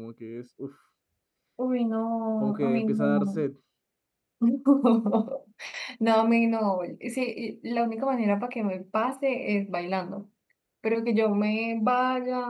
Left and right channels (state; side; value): identical; both; correlation 1.00